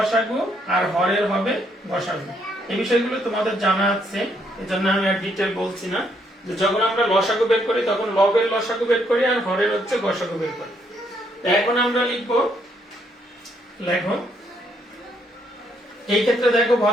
আর হরের হবে গসাগু। এই বিষয়গুলো তোমাদের জানা আছে, এজন্য আমি আর ডিটেইল বলছি না। যে যখন আমরা লসাগু বের করি তখন লবের লসাগু বের করি আর হরের হচ্ছে গসাগু বের করি। এখন আমরা লিখবো, লেখো এই ক্ষেত্রে দেখো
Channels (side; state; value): both; normal; correlation 0.72